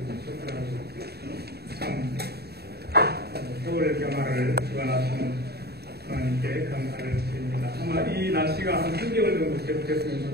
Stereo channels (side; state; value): left; late; 0.47 ms